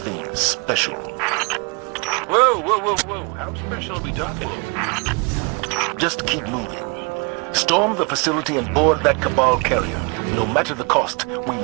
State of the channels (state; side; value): quieter; left; 31.6 dB